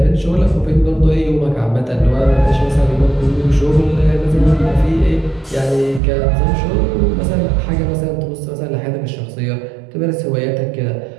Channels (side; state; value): left; drops out; at 6.0 s